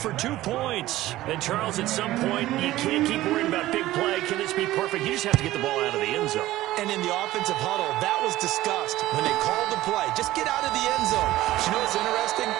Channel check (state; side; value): quieter; left; 15.9 dB